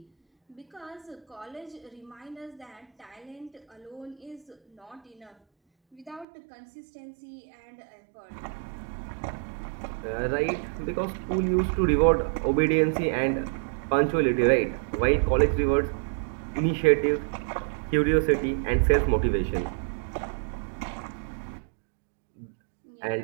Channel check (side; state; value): left; drops out; at 6.2 s